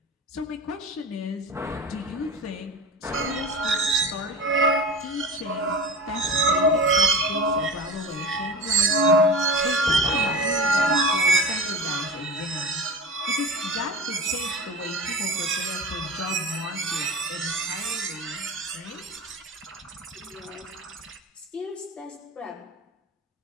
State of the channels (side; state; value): both; normal; correlation 0.32